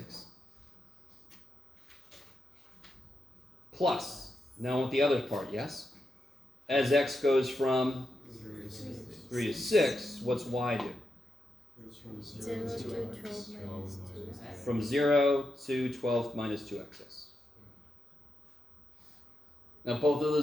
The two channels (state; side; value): normal; both; correlation 0.86